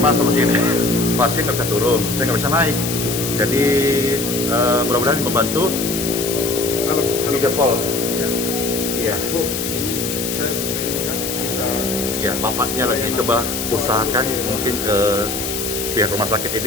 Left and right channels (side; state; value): left; noise; hiss, 4 dB below the sound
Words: solusi ini? Pasien nggak bisa turun, saya nggak bisa naik. Jadi mudah-mudahan membantu. Halo. Video call. Ya. Iya. Bu, ini saya bisa ini kan? Bisa. Ya, bapaknya lagi coba usahakan mungkin ke pihak rumah sakit